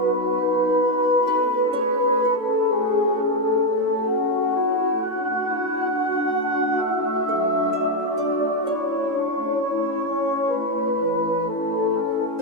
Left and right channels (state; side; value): late; right; 3.8 ms